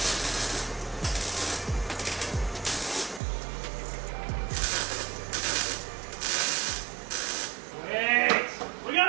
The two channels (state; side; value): drops out; left; at 3.2 s